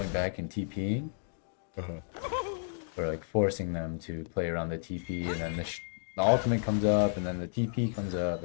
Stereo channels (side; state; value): right; silent; digital silence